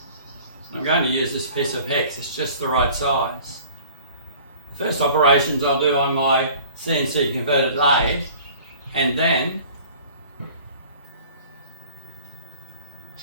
I'm going to use this piece of hex, it's just the right size. The first operations I'll do on my CNC converted lathe, and then,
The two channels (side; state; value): both; inverted; correlation -0.47